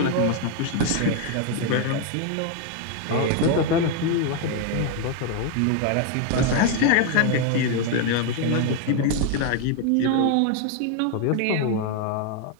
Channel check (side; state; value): both; different; correlation 0.01